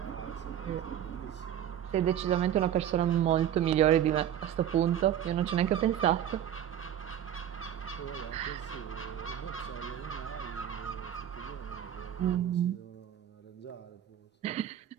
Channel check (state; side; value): quieter; left; 10.5 dB